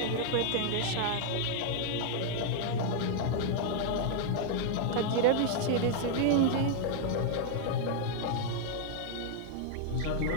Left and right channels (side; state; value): both; different; correlation 0.00